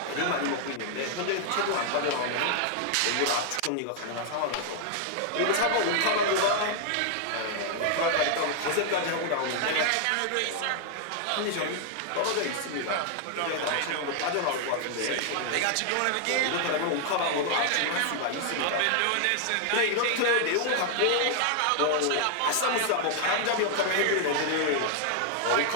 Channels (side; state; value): both; different; correlation 0.00